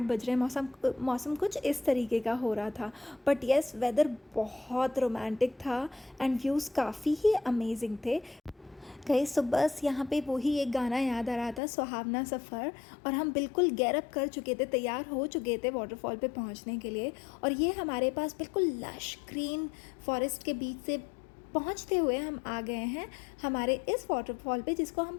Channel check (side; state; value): right; drops out; at 11.6 s